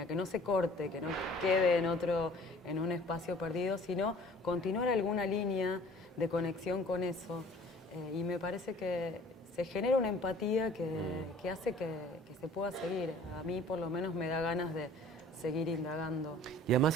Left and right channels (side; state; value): both; normal; correlation 0.50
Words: que no se corte, que no quede en un espacio perdido, sino continuar alguna línea de conexión con eso. Y me parece que se genera una empatía que hace que se pueda seguir. A mí por lo menos me da ganas de seguir indagando. Y además